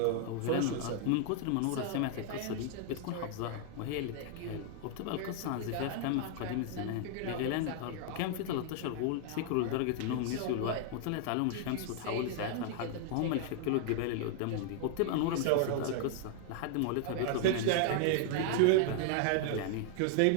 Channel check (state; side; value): different; both; correlation 0.00